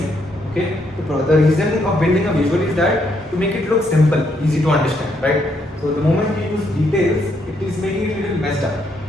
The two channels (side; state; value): both; normal; correlation 0.74